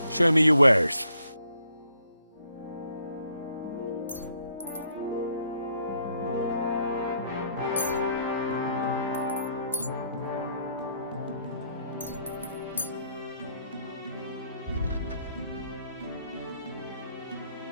Show me your wares.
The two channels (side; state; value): both; inverted; correlation -0.69